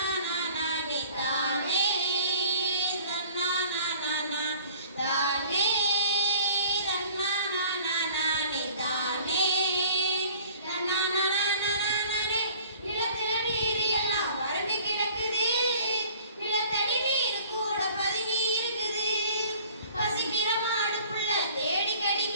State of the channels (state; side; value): inverted; both; correlation -0.49